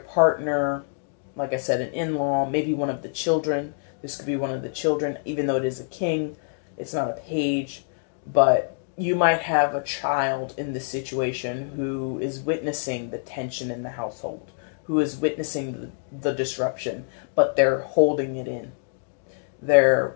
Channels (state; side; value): silent; right; digital silence